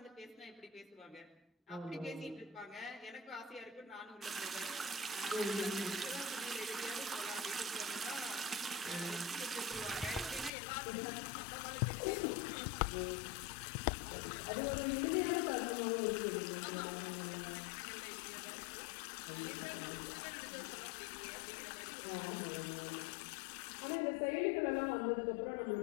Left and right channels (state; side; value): drops out; right; at 10.5 s